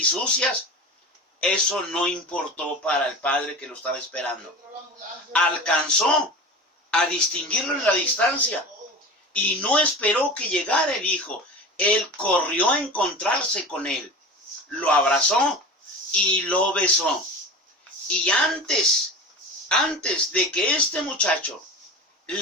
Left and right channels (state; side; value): normal; both; correlation 0.32